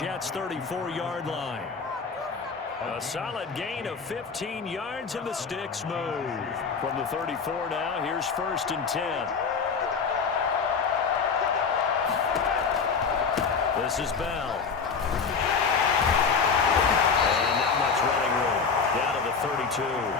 34-yard line. A solid gain of 15 yards and the sticks move. From the 34 now, here's 1st and 10. This is Bell. And not much running room. Down to the 32.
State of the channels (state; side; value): quieter; right; 5.5 dB